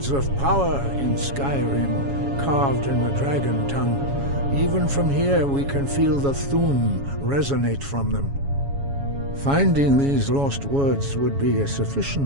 of power in Skyrim, carved in the dragon tongue. Even from here we can feel the Thum resonate from them. Finding these lost words would be a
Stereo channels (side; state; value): left; late; 7.2 ms